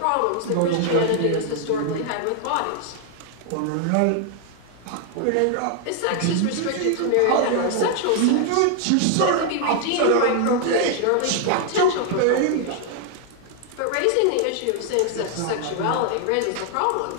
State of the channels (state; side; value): different; both; correlation 0.00